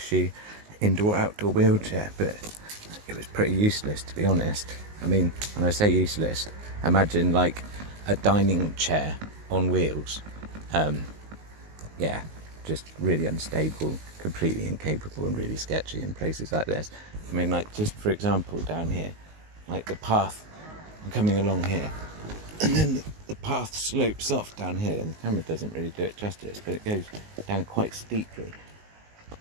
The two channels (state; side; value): late; left; 19 ms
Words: indoor-outdoor wheelchair, but it was pretty useless, to be honest. I mean, when I say useless, imagine like a dining chair on wheels. Yeah, just really unstable, completely incapable and really sketchy in places like this. I mean, like, just for example, down here, like the path, I'm coming along here, and then the path slopes off down here, and the camera doesn't really do it justice, but it goes down quite steeply.